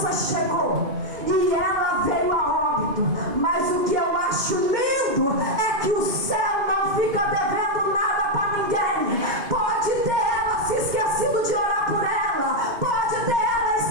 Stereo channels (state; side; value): late; left; 2.4 ms